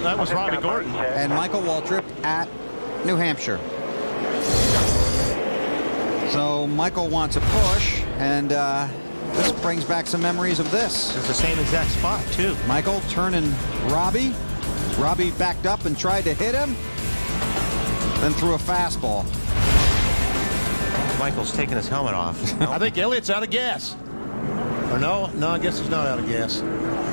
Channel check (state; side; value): inverted; both; correlation -1.00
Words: that was Robbie Gordon. And Michael Waltrip at New Hampshire. So Michael wants a push, and this brings back some memories of this. It's the same exact spot, too. Michael turning Robbie. Robbie backed up and tried to hit him, then threw a fastball. Michael's taking his helmet off. I think Elliott's out of gas. Or no, I guess he's not out of gas.